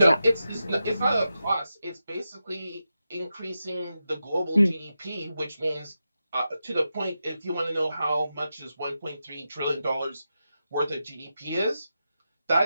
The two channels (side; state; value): both; inverted; correlation -0.89